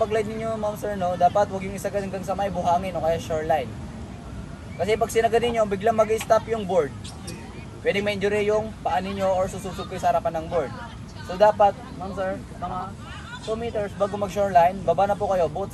ninyo ma'am sir, no, dapat huwag yung isagad hanggang sa may buhangin o kaya shoreline. Kasi pag sinagad ninyo, biglang mag-stop yung board. Pwedeng ma-injury yung paa ninyo or sususog kayo sa harapan ng board. So dapat, ma'am sir, mga 2 meters bago mag-shoreline, baba na po kayo both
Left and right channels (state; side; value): identical; both; correlation 1.00